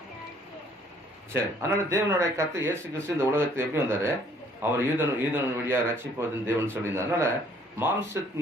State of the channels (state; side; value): normal; both; correlation 0.61